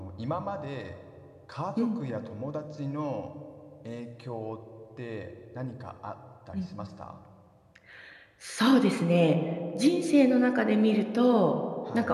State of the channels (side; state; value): both; identical; correlation 1.00